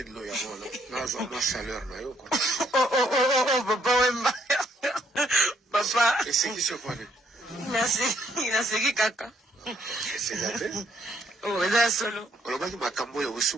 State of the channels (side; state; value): both; normal; correlation 0.69